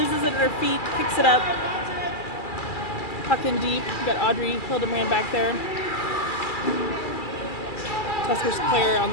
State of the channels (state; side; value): late; right; 2.3 ms